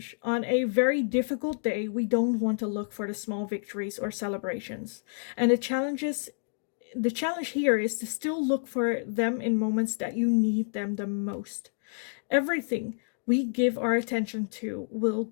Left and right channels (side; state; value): right; silent; digital silence